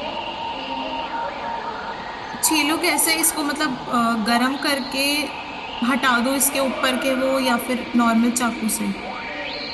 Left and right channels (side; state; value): both; identical; correlation 1.00